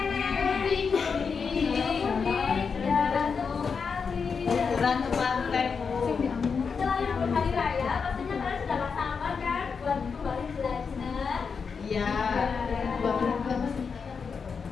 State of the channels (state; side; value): quieter; right; 5.7 dB